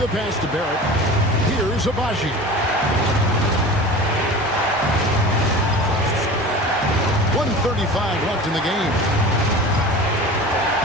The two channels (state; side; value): normal; both; correlation 0.36